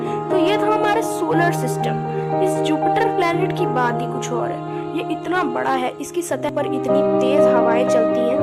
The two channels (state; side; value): identical; both; correlation 1.00